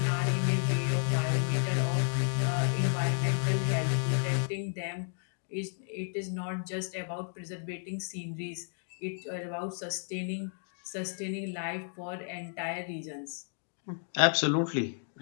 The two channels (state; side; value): silent; right; 56 dB below the other